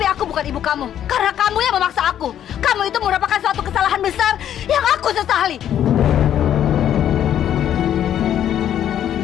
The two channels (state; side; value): quieter; right; 10.5 dB